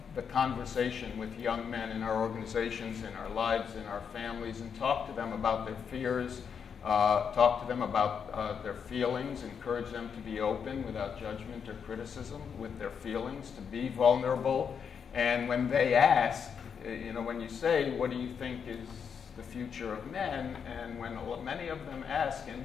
the conversation with young men in our organizations, in our lives, in our families, and talk to them about their fears, talk to them about their feelings, encourage them to be open without judgment or criticism with their feelings, to be vulnerable. And when they ask, when you say, what do you think is the future of men? And when many of them ask, and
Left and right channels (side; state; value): right; quieter; 6.9 dB